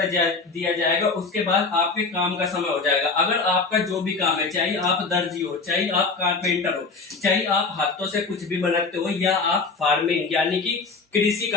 दिया जाएगा, उसके बाद आपके काम का समय हो जाएगा। अगर आपका जो भी काम है, चाहे आप दर्जी हो, चाहे आप कारपेंटर हो, चाहे आप हाथों से कुछ भी बनाते हो या आप फार्मिंग यानी कि कृषि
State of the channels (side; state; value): right; quieter; 4.3 dB